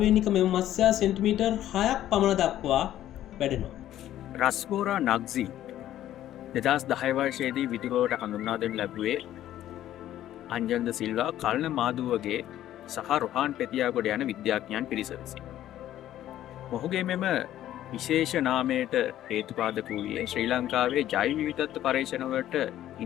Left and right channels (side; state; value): right; quieter; 12.6 dB